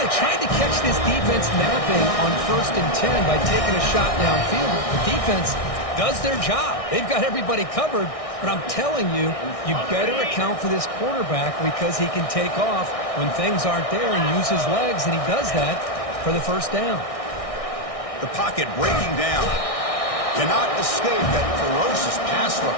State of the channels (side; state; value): right; late; 1.6 ms